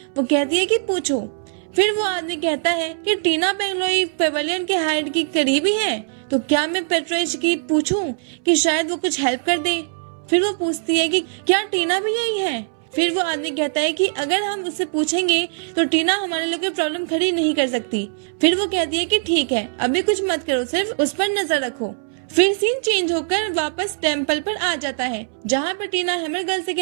वो कहती है कि पूछो। फिर वो आदमी कहता है कि टीना पेंगलोई पेवेलियन के हाइड की करीबी है, तो क्या मैं पेट्रेज की पूछूं कि शायद वो कुछ हेल्प कर दे। फिर वो पूछती है कि क्या टीना भी यही है। फिर वो आदमी कहता है कि अगर हम उससे पूछेंगे तो टीना हमारे लिए कोई प्रॉब्लम खड़ी नहीं कर सकती। फिर वो कहती है कि ठीक है, अभी कुछ मत करो, सिर्फ उस पर नजर रखो। फिर सीन चेंज होकर वापस टेम्पल पर आ जाता है जहाँ पर टीना हैमर गर्ल से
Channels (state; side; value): silent; left; 64 dB below the other